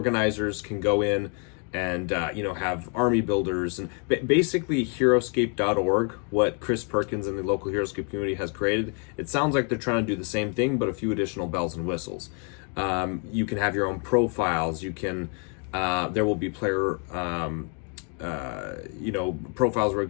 can go in and have army builders, and basically Heroscape.org, what Chris Perkins and the local Heroscape community has created. It sounds like they're trying to do the same thing, but a few additional bells and whistles. You can have your own profiles. You can there will be player profiles where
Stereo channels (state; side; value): quieter; right; 39.3 dB